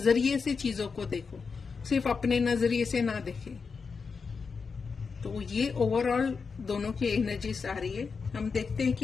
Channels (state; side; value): quieter; right; 5.2 dB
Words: से चीजों को देखो, सिर्फ अपने नजरिए से ना देखें। तो ये ओवरऑल दोनों की एनर्जीज आ रही है। हम देखते हैं